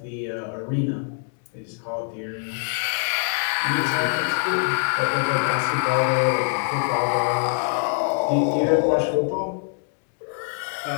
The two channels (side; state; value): right; silent; digital silence